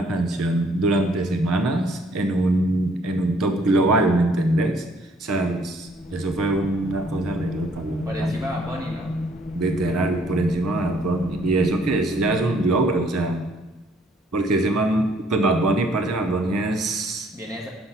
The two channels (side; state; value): both; normal; correlation 0.63